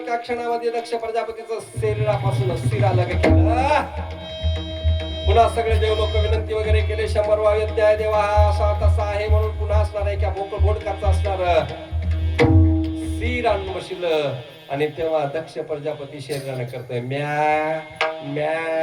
क्षणामध्ये दक्ष प्रजापतीचं शरीरापासून शिर अलग केलं. पुन्हा सगळे देव लोक विनंती वगैरे केले. 100 वाद्य देवा हा असा तसा आहे म्हणून पुन्हा असणार आहे. बोकड बोडकाचा असणार शिर आणून बसलं. आणि तेव्हा दक्ष प्रजापती शरीराने करतोय म्या म्या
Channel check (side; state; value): both; identical; correlation 1.00